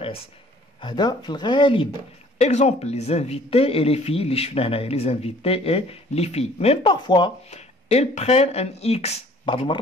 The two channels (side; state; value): both; normal; correlation 0.54